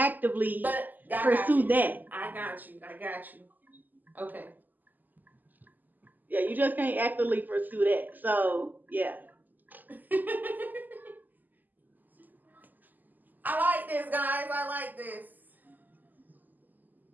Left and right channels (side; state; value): left; late; 0.085 ms